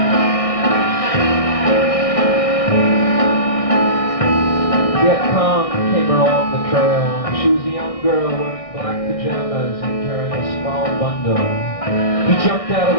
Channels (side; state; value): right; late; 1.6 ms